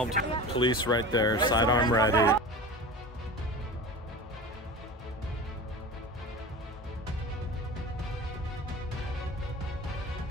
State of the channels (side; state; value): both; normal; correlation 0.32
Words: Police right there, sidearm ready.